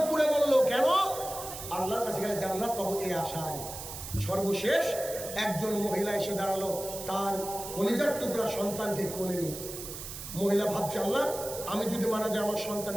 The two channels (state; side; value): noise; right; hiss, 9 dB below the sound